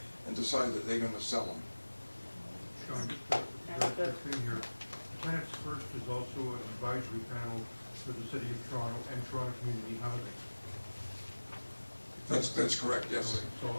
and decide that they're going to sell them. Sean, just a thing here. Tenants First is also an advisory panel for the City of Toronto and Toronto Community Housing. That's correct, yes. So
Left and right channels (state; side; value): inverted; both; correlation -1.00